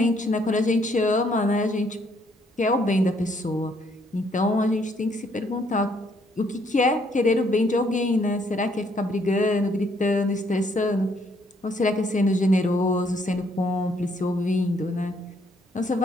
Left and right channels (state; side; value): normal; both; correlation 0.68